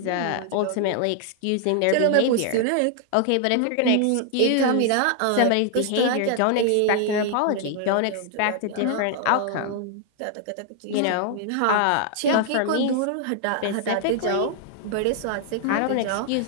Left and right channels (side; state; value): both; different; correlation 0.00